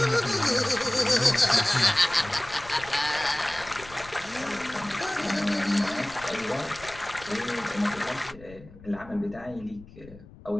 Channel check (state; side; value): noise; left; rumble, 20 dB below the sound